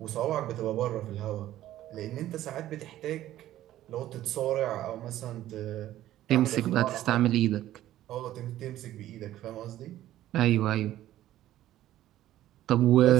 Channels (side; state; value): left; quieter; 13.6 dB